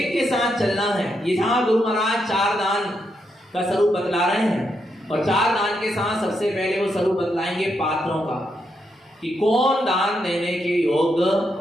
के साथ चलना है। यहाँ गुरु महाराज 4 दान का स्वरूप बतला रहे हैं, और 4 दान के साथ सबसे पहले वो स्वरूप बतलाएंगे पात्रों का, कि कौन दान देने के योग्य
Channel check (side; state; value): both; normal; correlation 0.81